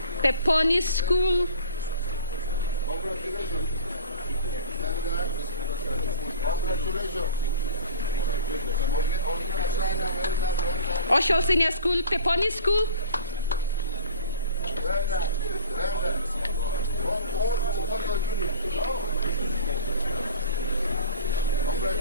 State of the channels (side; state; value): both; inverted; correlation -0.41